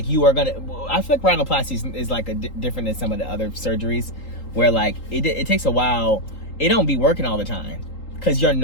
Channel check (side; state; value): right; late; 3.8 ms